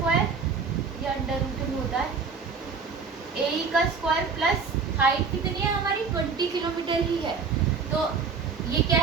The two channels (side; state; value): left; quieter; 5.2 dB